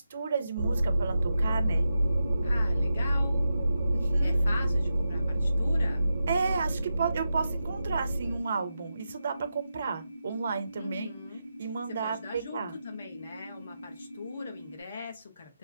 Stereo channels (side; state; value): both; inverted; correlation -0.88